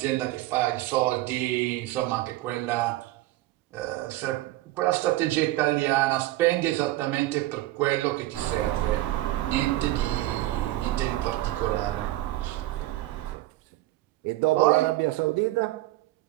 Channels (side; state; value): left; quieter; 16.8 dB